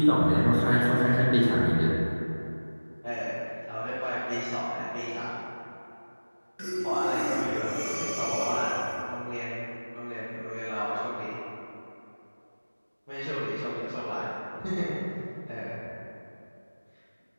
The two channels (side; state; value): both; inverted; correlation -1.00